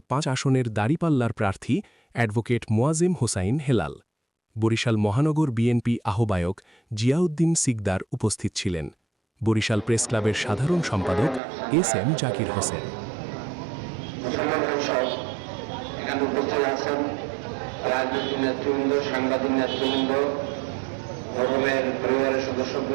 ৫ আসনের দাঁড়িপাল্লার প্রার্থী অ্যাডভোকেট মোয়াজেম হোসাইন হেলাল। বরিশাল মহানগর বিএনপি আহ্বায়ক জিয়াউদ্দিন সিকদার উপস্থিত ছিলেন। বরিশাল প্রেস ক্লাবের সাধারণ সম্পাদক এস এম জাকির হোসেন। এখানে উপস্থিত আছেন রাজনৈতিক নেতৃবৃন্দ, সাংবাদিক নেতৃবৃন্দ, ভবনের পরিবারের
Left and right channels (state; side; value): drops out; left; at 11.4 s